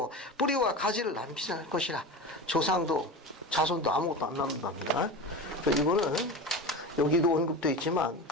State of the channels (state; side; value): normal; both; correlation 0.28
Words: 뿌리와 가지를 남기지 않을 것이라. 조상도 자손도 아무것도 안 남는답니다. 이거는 여기도 언급되어 있지만